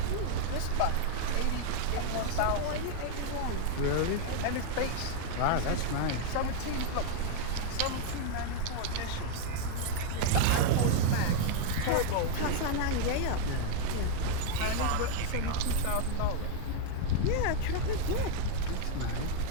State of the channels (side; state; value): both; different; correlation 0.00